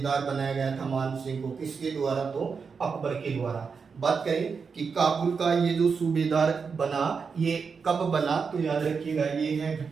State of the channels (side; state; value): left; quieter; 5.5 dB